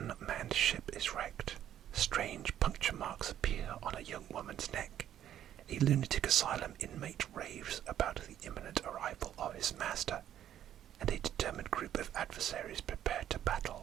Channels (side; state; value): left; quieter; 11.0 dB